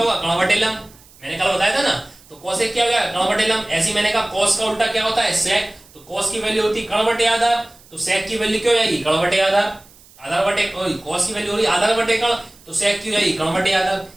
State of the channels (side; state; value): right; noise; hiss, 26 dB below the sound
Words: कर्ण/लंब। मैंने कल बताया था ना, तो कोसेक क्या हो गया, कर्ण/लंब। ऐसे मैंने कहा कॉस का उल्टा क्या होता है, सेक, तो कॉस की वैल्यू होती कर्ण/आधार, तो सेक की वैल्यू क्या हो जाएगी, कर्ण/आधार। आधार बटे कॉस की वैल्यू हो रही आधार/कर्ण, तो सेक की जाएगी कर्ण/आधार।